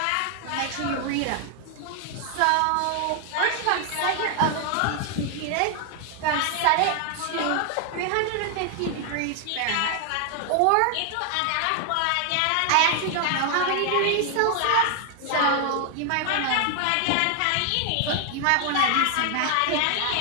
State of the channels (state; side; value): different; both; correlation 0.00